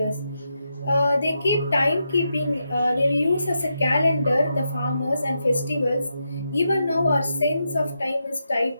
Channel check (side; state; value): both; inverted; correlation -0.85